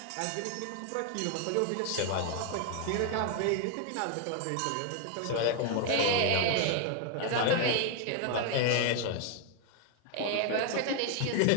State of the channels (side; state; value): both; different; correlation 0.00